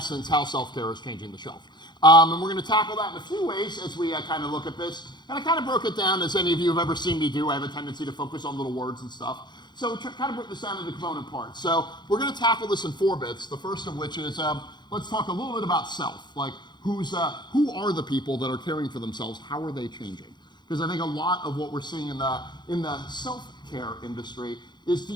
how self-care is changing the shelf. And we're going to tackle that in a few ways as we kind of look at this. And I kind of broke it down, as any of you have ever seen me do. I have a tendency to focus on little words and stuff. So kind of break this down into component parts. So we're going to tackle this in 4 bits, the first of which is let's talk a little bit about self. Like who are the people that are caring for themselves? How are they changing? Because I think a lot of what we're seeing in the self-care industry is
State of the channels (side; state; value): right; late; 0.21 ms